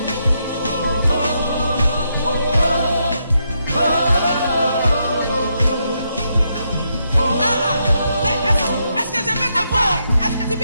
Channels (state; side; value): inverted; both; correlation -0.80